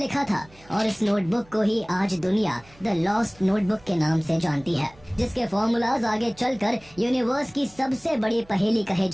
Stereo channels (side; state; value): right; noise; hum, 26 dB below the sound